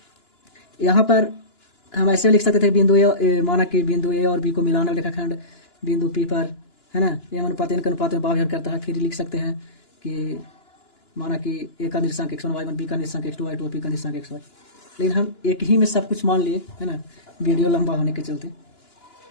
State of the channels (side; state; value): right; late; 2.9 ms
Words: यहाँ पर हम ऐसे लिख सकते थे, बिंदु ए, माना कि बिंदु ए और बी को मिलाने वाला रेखाखंड बिंदु P पर, है ना, m अनुपात n के अनुपात में बाह्य विभाजन करता है। फिर लिख सकते हैं कि माना कि ए का निर्देशांक x1 y1, बी का निर्देशांक x2 y2, पी का निर्देशांक xy। लेकिन हम एक ही में सब कुछ मान लिए, है ना, वीडियो लंबा होने के चलते।